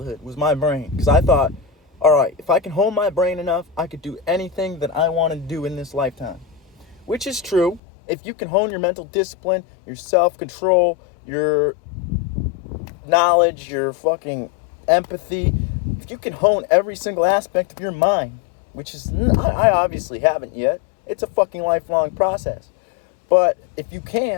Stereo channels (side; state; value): right; drops out; at 7.8 s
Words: was my brain, because I thought, all right, if I can hone my brain enough, I could do anything that I want to do in this lifetime. Which is true. If you can hone your mental discipline, your self-control, your knowledge, your fucking empathy, if you can hone every single aspect of your mind, which is, I obviously haven't yet. It's a fucking lifelong process. But if you